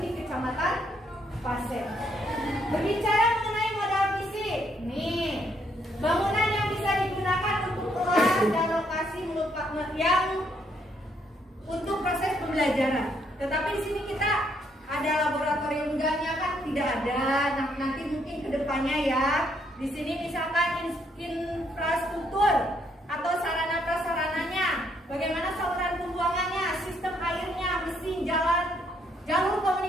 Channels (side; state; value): both; normal; correlation 0.72